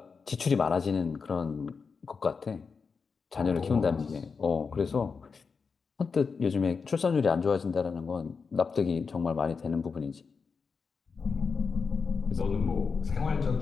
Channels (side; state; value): right; quieter; 5.2 dB